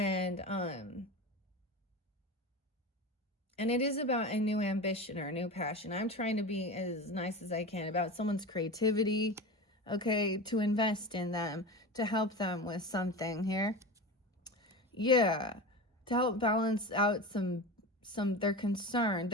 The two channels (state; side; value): normal; both; correlation 0.27